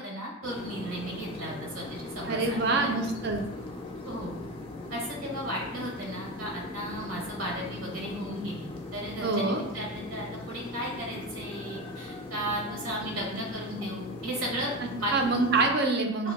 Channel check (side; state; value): both; normal; correlation 0.21